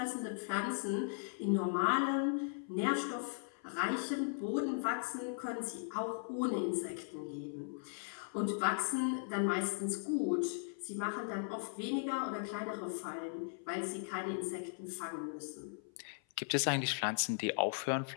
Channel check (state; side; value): silent; right; 52 dB below the other